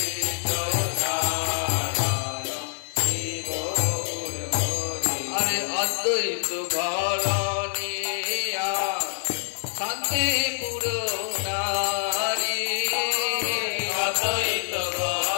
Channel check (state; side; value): silent; right; digital silence